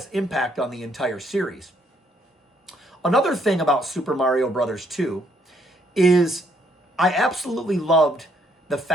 impact on the entire series. Another thing about Super Mario Bros. 2 is I absolutely loved the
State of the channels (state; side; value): normal; both; correlation 0.69